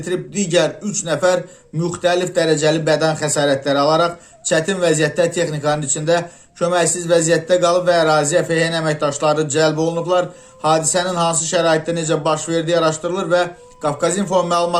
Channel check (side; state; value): both; identical; correlation 1.00